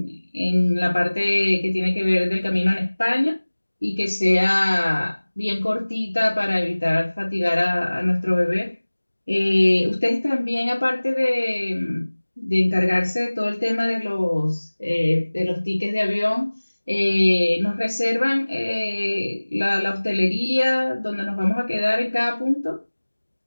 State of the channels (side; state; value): both; inverted; correlation -1.00